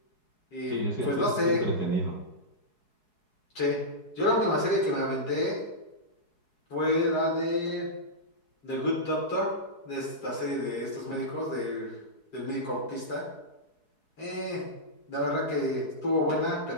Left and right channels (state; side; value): late; right; 4.7 ms